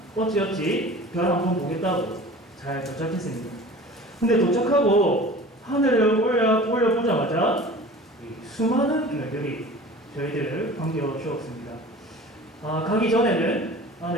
어찌어찌 별 한번 보겠다고 잘 도착했습니다. 근데 도착하고 하늘을 올려보자마자 수많은 별들이 저희들을 반겨주었습니다. 가기 전에는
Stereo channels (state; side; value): normal; both; correlation 0.41